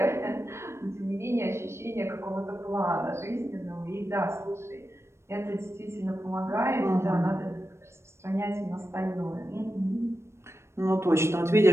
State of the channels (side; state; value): left; late; 0.13 ms